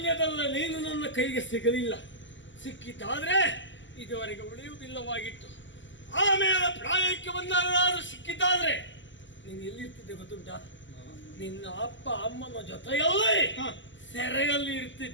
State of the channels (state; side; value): late; right; 0.54 ms